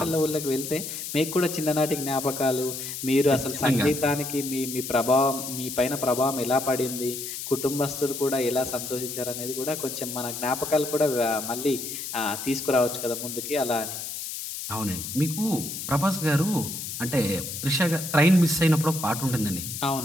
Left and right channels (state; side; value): noise; left; hiss, 7 dB below the sound